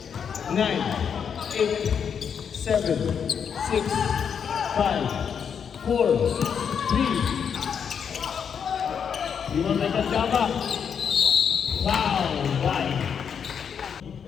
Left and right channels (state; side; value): quieter; right; 7.3 dB